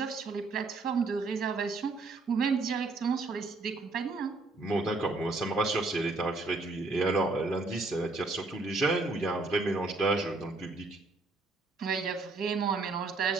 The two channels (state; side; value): quieter; left; 3.5 dB